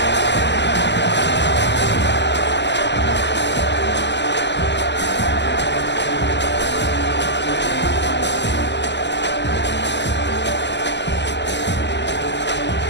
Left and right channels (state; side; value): late; right; 0.51 ms